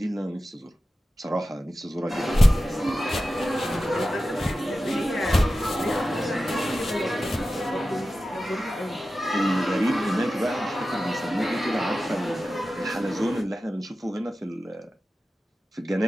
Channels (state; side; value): normal; both; correlation 0.94